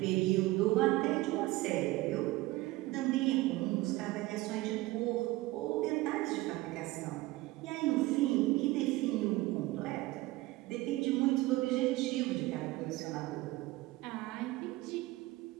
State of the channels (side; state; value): left; quieter; 19.2 dB